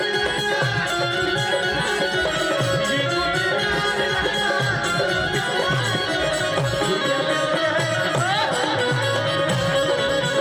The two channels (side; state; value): both; identical; correlation 1.00